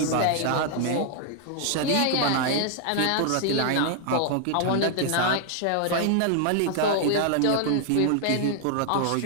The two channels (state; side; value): different; both; correlation 0.00